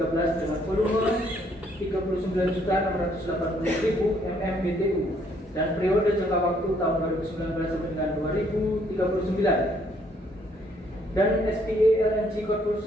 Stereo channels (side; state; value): both; normal; correlation 0.67